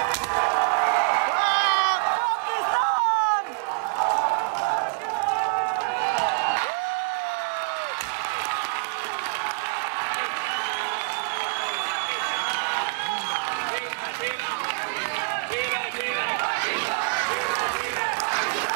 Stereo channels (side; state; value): left; quieter; 37.4 dB